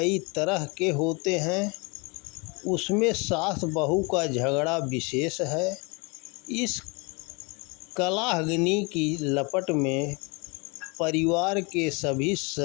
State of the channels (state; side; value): quieter; right; 29.5 dB